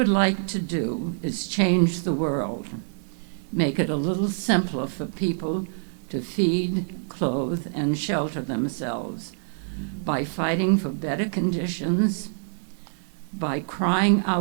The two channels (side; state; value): left; silent; digital silence